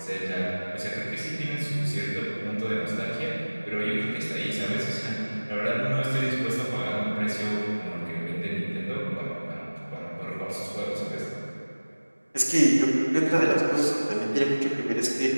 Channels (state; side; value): inverted; both; correlation -1.00